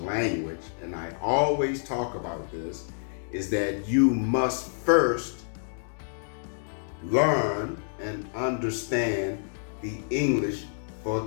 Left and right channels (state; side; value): silent; right; digital silence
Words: and I always talk about this, is that you must first learn and understand the English